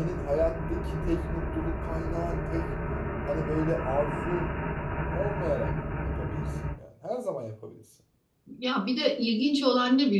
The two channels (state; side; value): identical; both; correlation 1.00